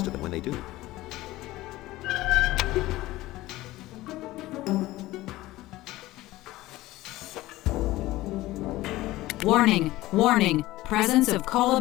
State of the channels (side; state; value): right; quieter; 17.6 dB